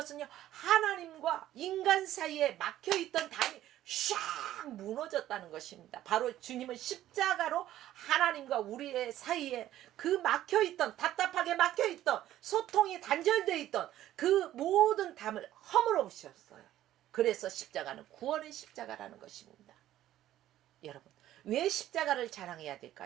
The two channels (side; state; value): left; quieter; 13.3 dB